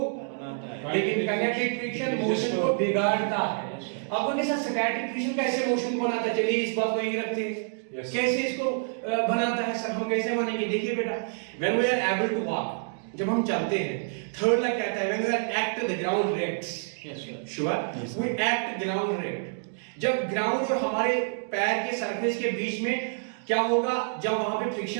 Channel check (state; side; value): silent; left; digital silence